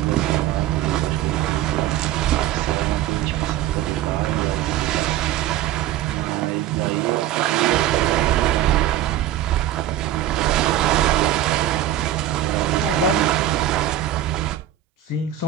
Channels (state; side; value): quieter; left; 12.2 dB